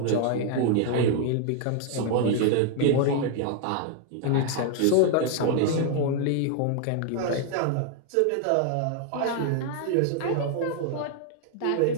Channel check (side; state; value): both; different; correlation 0.00